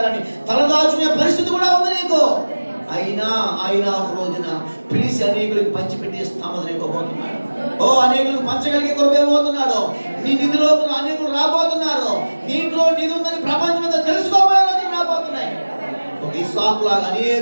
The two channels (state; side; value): inverted; both; correlation -1.00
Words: తలదాచుకునే పరిస్థితి కూడా ఉంది నీకు. అయినా ఒక రోజున పిలిచి అనేకులకు పంచిపెట్టి స్థామని ఇవ్వబోతున్నాడు. ఓ అనేకులకు పంచగలిగే కృప ఇవ్వబోతున్నాడు. నీ నిధిలో అనేకులు రాబోతున్నారు. దీంట్లో నిధి ఉందని ప్రపంచం అంతా తెలుసుకోబోయే రోజులు రాబోతున్నాయి. ఒక ఇస్సాకు లాగా